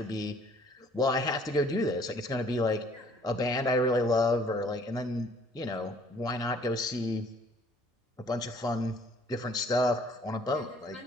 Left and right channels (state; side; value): normal; both; correlation 0.58